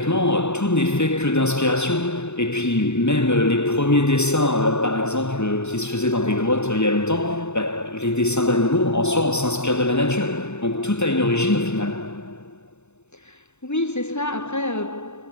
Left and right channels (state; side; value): late; right; 0.82 ms